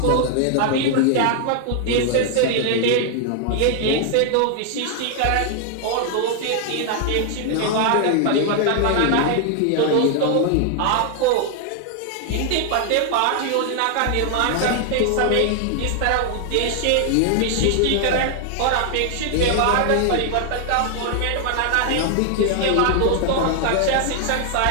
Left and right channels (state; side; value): different; both; correlation 0.00